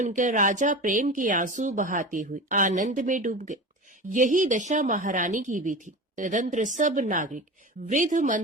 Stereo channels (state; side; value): normal; both; correlation 0.30